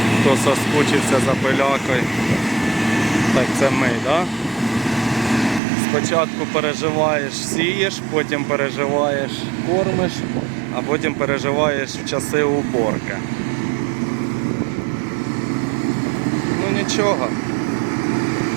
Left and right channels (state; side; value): drops out; left; at 5.6 s